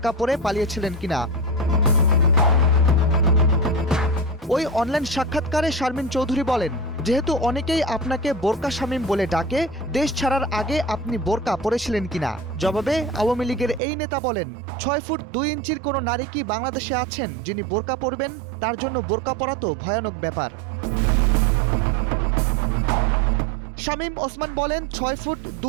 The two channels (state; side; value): drops out; left; at 13.8 s